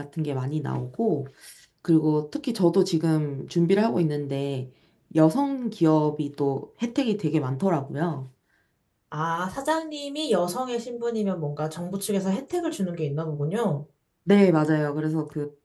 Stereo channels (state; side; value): identical; both; correlation 1.00